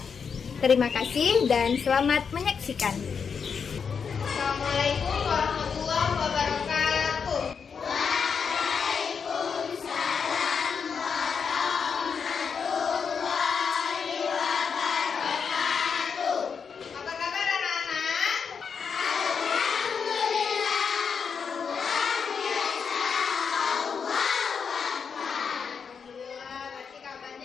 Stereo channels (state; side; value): quieter; right; 6.2 dB